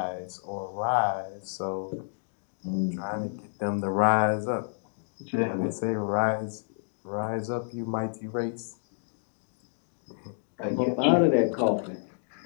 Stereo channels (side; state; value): right; silent; digital silence